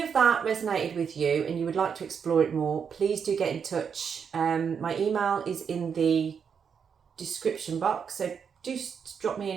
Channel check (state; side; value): quieter; left; 6.8 dB